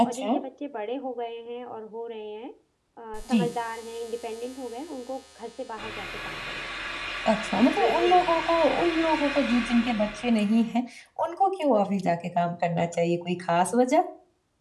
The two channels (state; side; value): identical; both; correlation 1.00